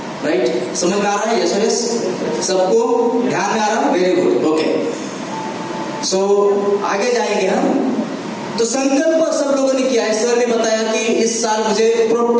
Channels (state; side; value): identical; both; correlation 1.00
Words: राइट? समझ में आ रहा है? यस यस, सबको ध्यान में आ रहा है? Very good, okay. सो आगे जाएंगे हम। तो संकल्प सब लोगों ने किया है। सर ने बताया कि इस साल मुझे